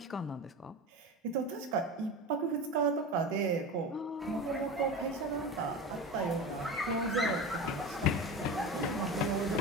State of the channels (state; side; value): normal; both; correlation 0.28